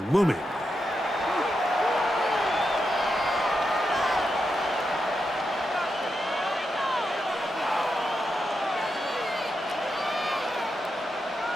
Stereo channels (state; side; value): normal; both; correlation 0.86